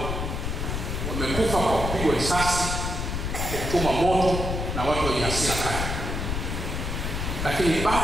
wamekufa kwa kupigwa risasi, kuchoma moto na watu wenye hasira kali. Lakini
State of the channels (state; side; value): noise; left; rumble, 2 dB below the sound